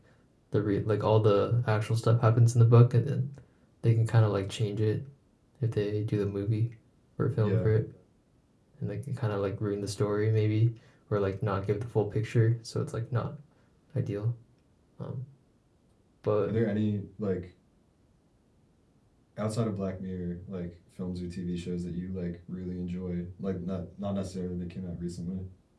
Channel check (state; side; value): identical; both; correlation 1.00